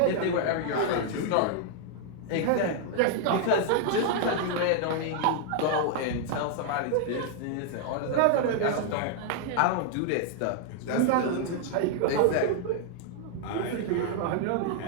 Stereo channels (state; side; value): different; both; correlation 0.00